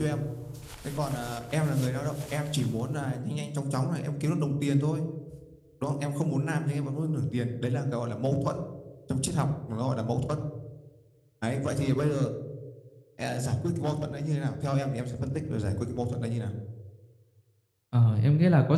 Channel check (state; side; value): identical; both; correlation 1.00